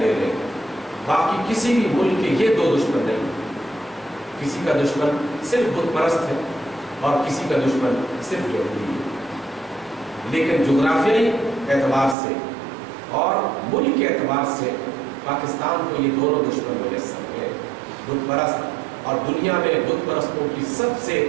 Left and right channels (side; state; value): left; drops out; at 12.2 s